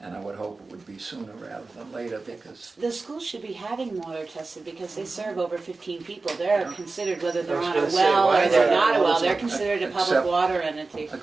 And I would hope it would be sooner rather than later, because The school should be having water tested because they serve over 15 people. They're considered, whether they're I was on a gonna say, well why or is they're that? not a well, they're Except- considered a public water entity.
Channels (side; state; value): left; quieter; 3.8 dB